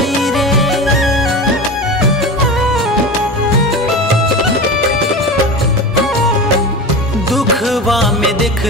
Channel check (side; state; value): both; normal; correlation 0.28